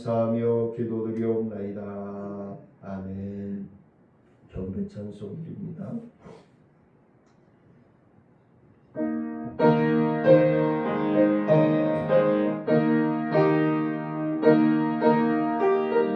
기도드리옵나이다. 아멘. 경배 찬송드립니다.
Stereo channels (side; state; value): both; identical; correlation 1.00